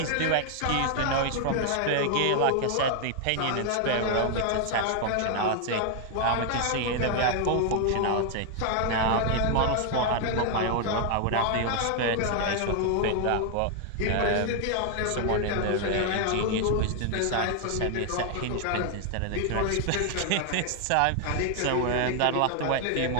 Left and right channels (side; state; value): both; different; correlation 0.00